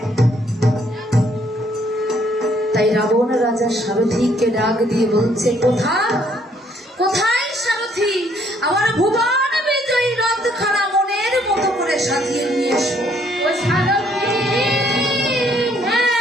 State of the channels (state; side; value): normal; both; correlation 0.66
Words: তাই রাবণ রাজা সারথীকে ডাক দিয়ে বলছে, কোথায় কোথায় সারথী, আমার ভুবন বিজয়ী রথখানা মনের মতো করে সাজিয়ে নিয়ে এসো। ও সারথী,